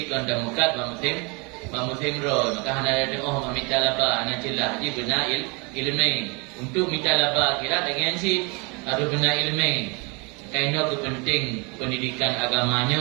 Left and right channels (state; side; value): quieter; left; 30.4 dB